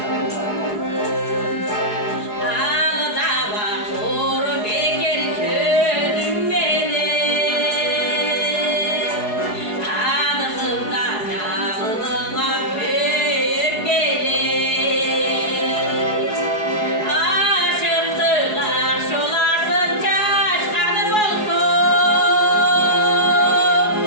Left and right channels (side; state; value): right; late; 4.7 ms